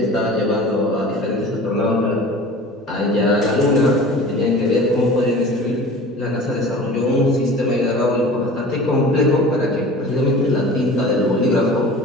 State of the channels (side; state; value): both; normal; correlation 0.40